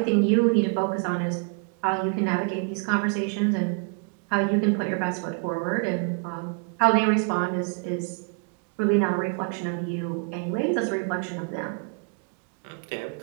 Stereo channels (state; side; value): quieter; left; 38.1 dB